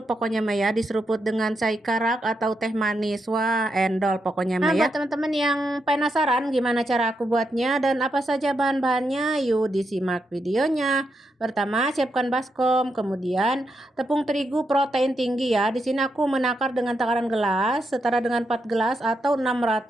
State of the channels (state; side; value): normal; both; correlation 0.83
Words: pokoknya Maya, diseruput dengan chai karak atau teh manis. Wah, endol pokoknya Maya. Nah, buat teman-teman yang penasaran gimana cara aku buatnya dan apa saja bahan-bahannya, yuk disimak videonya. Pertama, siapkan baskom, kemudian tepung terigu protein tinggi ya. Di sini aku menakar dengan takaran gelas setara dengan 4 gelas atau